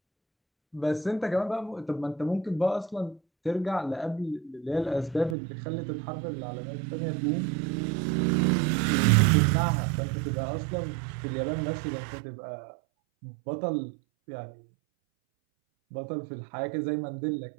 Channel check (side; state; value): left; drops out; at 5.4 s